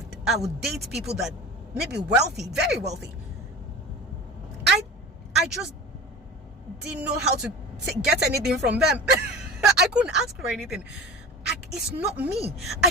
would date people that maybe wealthy, very wealthy. I just didn't know how to get anything from them. I couldn't ask for anything. It's not me. I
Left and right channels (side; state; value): both; normal; correlation 0.35